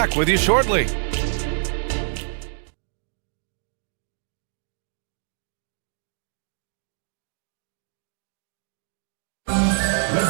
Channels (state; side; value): silent; left; digital silence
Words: with you shortly.